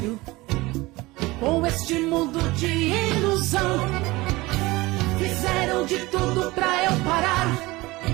sério com este mundo de ilusão. Fizeram de tudo pra eu parar,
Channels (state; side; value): quieter; left; 21.0 dB